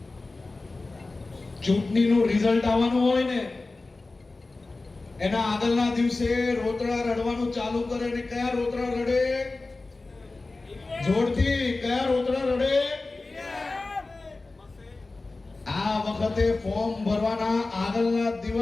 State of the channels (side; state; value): right; quieter; 3.4 dB